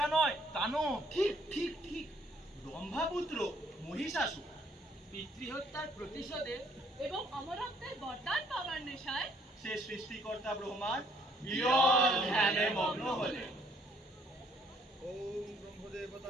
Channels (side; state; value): both; normal; correlation 0.65